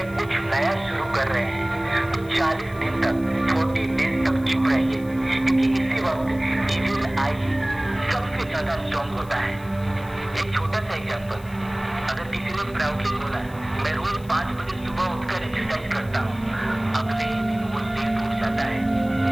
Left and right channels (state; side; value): noise; left; hiss, 24 dB below the sound